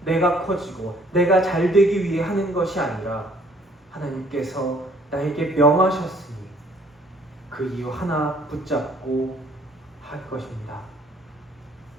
내가 커지고 내가 잘 되기 위해 하는 것이 아니라 하나님께서 나에게 명하셨으니 그 이유 하나 붙잡고 할 것입니다.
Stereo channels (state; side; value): normal; both; correlation 0.60